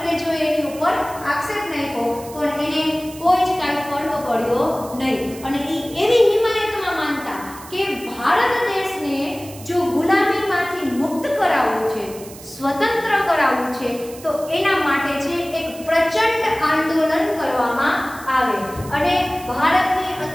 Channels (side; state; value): right; noise; hiss, 17 dB below the sound